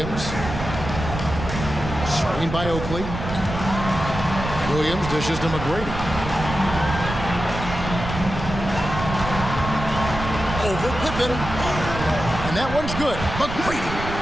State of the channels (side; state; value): right; noise; rumble, 7 dB below the sound